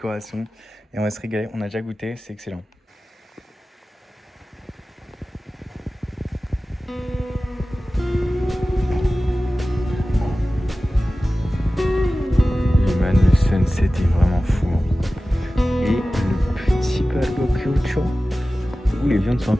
et on va se régaler. On a déjà goûté, c'est excellent. Les man, le sunset est vraiment fou. Et le petit barbecue, où les viandes sont un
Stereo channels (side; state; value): both; normal; correlation 0.96